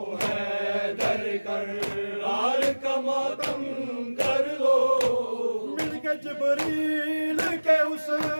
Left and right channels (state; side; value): inverted; both; correlation -1.00